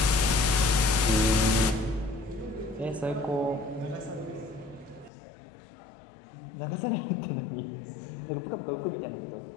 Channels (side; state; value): right; drops out; at 5.1 s